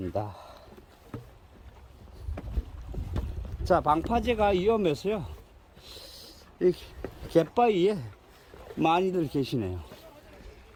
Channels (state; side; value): identical; both; correlation 1.00